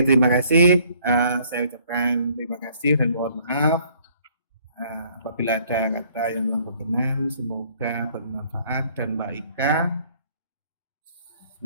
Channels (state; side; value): inverted; both; correlation -0.61